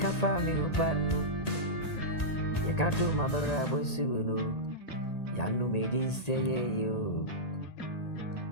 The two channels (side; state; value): right; late; 1.8 ms